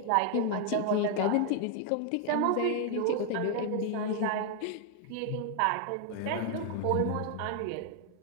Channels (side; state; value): both; different; correlation 0.00